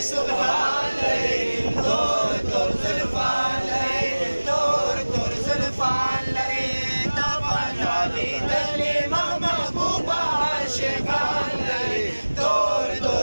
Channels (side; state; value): both; inverted; correlation -1.00